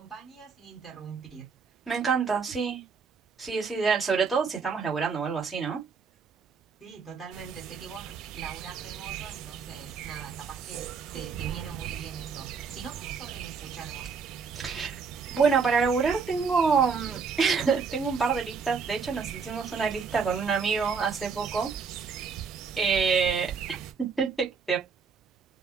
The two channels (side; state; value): left; quieter; 5.5 dB